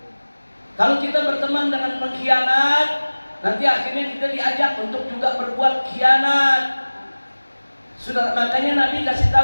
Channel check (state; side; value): inverted; both; correlation -1.00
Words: Kalau kita berteman dengan pengkhianat, nanti akhirnya kita diajak untuk juga berbuat khianat. Sudah, makanya Nabi kasih